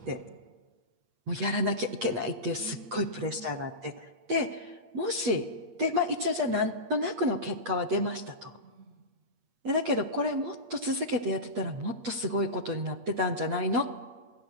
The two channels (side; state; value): left; late; 8.5 ms